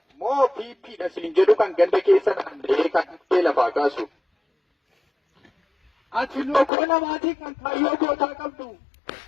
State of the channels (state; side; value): drops out; right; at 6.7 s